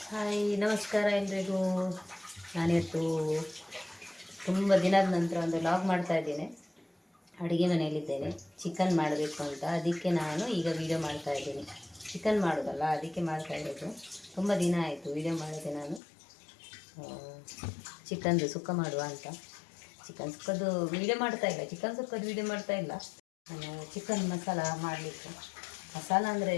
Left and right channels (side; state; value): right; drops out; at 16.0 s